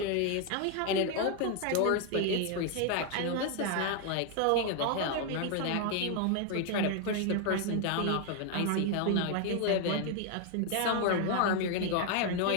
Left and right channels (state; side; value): different; both; correlation 0.00